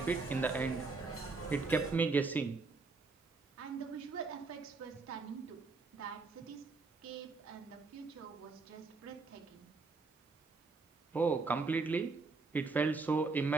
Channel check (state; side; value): quieter; left; 4.1 dB